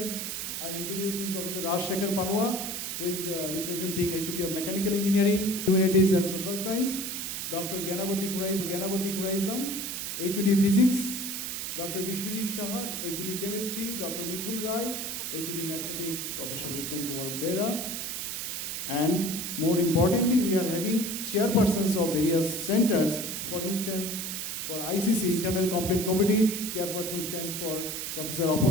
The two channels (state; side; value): noise; right; hiss, 4 dB below the sound